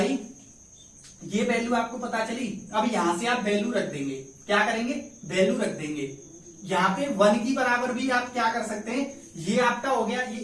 ये वैल्यू आपको पता चली, अब यहां से आप वैल्यू रख देंगे, क्या करेंगे, वैल्यू रख देंगे। यहाँ पे 1 की बराबर भी आप क्या कर सकते हैं, ये आपका हो गया, ये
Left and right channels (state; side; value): identical; both; correlation 1.00